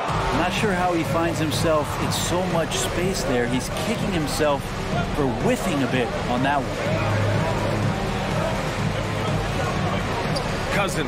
not sure how he finds himself in so much space there. He's kicking himself for whiffing a bit on that one.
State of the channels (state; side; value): identical; both; correlation 1.00